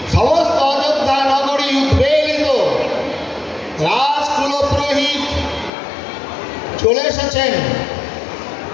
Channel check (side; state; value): right; drops out; at 5.7 s